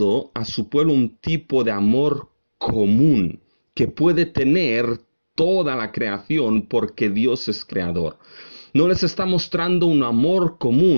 a su pueblo un tipo de amor común que puede tener toda la creación porque Dios es creador. No les está mostrando un amor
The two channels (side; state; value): both; inverted; correlation -1.00